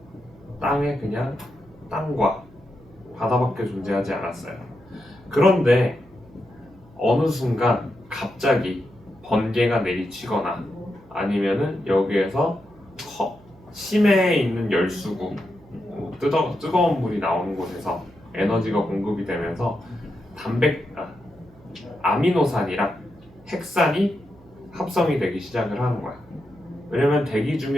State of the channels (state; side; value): noise; right; hum, 26 dB below the sound